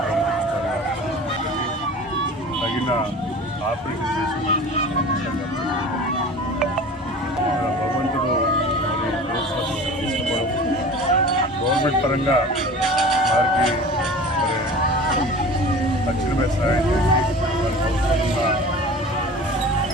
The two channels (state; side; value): normal; both; correlation 0.39